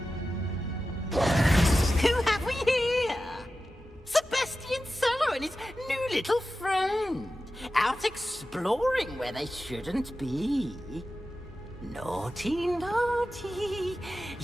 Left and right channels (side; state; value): both; normal; correlation 0.93